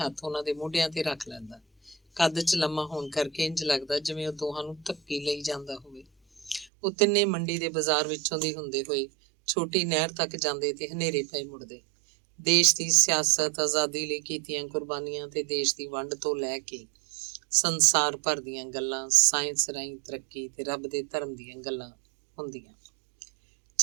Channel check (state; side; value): drops out; left; at 6.7 s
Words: ਉਹਨਾਂ ਦੇ ਮੋਢਿਆਂ ਤੇ ਰੱਖ ਲੈਂਦਾ। ਕੱਦ 'ਚ ਲੰਮਾ ਹੋਣ ਕਰਕੇ ਇੰਝ ਲੱਗਦਾ ਜਿਵੇਂ ਉਹ ਦੋਹਾਂ ਨੂੰ ਧੱਕੀ ਲਈ ਜਾਂਦਾ ਹੋਵੇ। ਉਹ ਤਿੰਨੇ ਮੰਡੀ ਦੇ ਬਾਜ਼ਾਰ ਵਿੱਚੋਂ ਦੀ ਹੁੰਦੇ ਹੋਏ ਛੋਟੀ ਨਹਿਰ ਤੱਕ ਜਾਂਦੇ ਤੇ ਹਨੇਰੇ ਪਏ ਮੁੜਦੇ। ਦੇਸ਼ ਦੀ ਸਿਆਸਤ, ਆਜ਼ਾਦੀ ਲਈ ਕੀਤੀਆਂ ਕੁਰਬਾਨੀਆਂ ਤੇ ਦੇਸ਼ ਦੀ ਵੰਡ ਤੋਂ ਲੈ ਕੇ ਸੰਸਾਰ ਭਰ ਦੀਆਂ ਗੱਲਾਂ, ਸਾਇੰਸ ਰਾਹੀਂ ਤਰੱਕੀ ਤੇ ਰੱਬ ਦੇ ਧਰਮ ਦੀਆਂ ਗੱਲਾਂ ਹੁੰਦੀਆਂ।